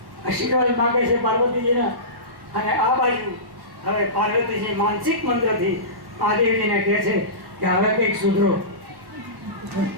આશીર્વાદ માંગે છે પાર્વતીજીના. અને આ બાજુ હવે પાર્વતીજી માનસિક મંત્રથી મહાદેવજીને કહે છે કે હવે કંઈક સુધરો.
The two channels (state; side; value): late; left; 1.1 ms